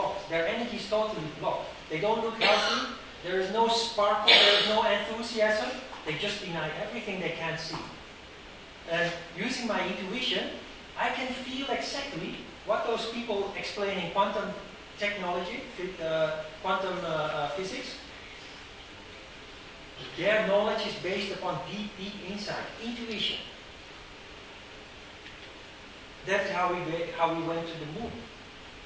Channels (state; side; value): identical; both; correlation 1.00